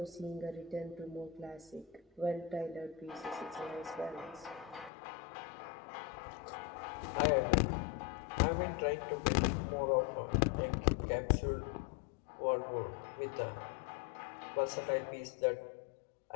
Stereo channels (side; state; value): right; drops out; at 4.9 s